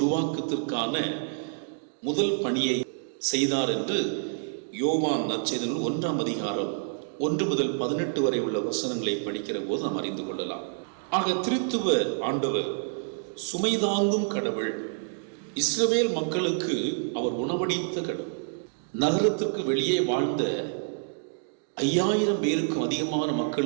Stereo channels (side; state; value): left; silent; digital silence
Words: முதல் பணியை செய்தார் என்று யோவான் நற்செய்தி 1ஆம் அதிகாரம் 1 முதல் 18 வரை உள்ள வசனங்களை படிக்கிற போது நாம் அறிந்து கொள்ளலாம். ஆக திருத்துவ ஆண்டவர் சுமைதாங்கும் கடவுள், இஸ்ரவேல் மக்களுக்கு அவர் உணவளித்த கடவுள், நகரத்திற்கு வெளியே வாழ்ந்த 5000 பேருக்கும் அதிகமான